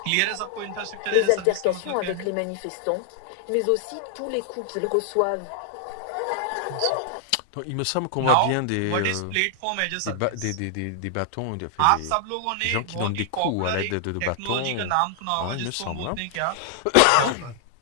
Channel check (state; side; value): different; both; correlation -0.01